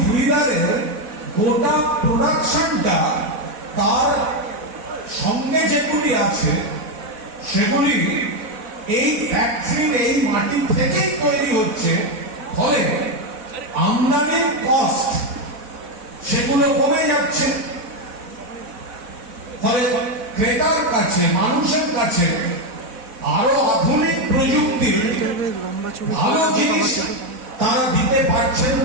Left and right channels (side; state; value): left; late; 4.1 ms